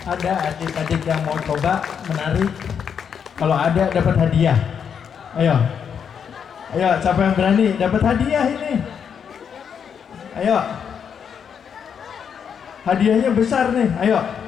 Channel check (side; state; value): right; quieter; 7.4 dB